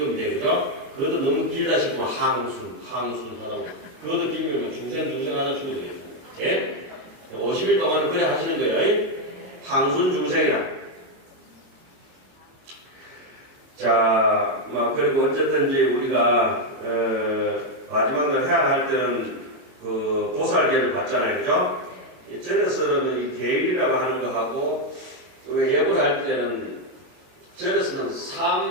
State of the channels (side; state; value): left; late; 22 ms